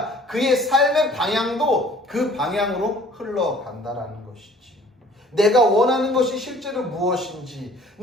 그의 삶의 방향도 그 방향으로 흘러간다라는 것이지. 내가 원하는 것이 실제로 무엇인지,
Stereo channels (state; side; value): normal; both; correlation 0.53